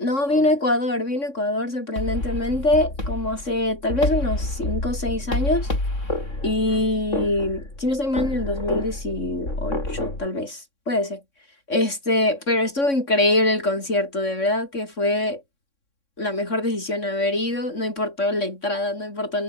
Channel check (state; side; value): late; right; 3.6 ms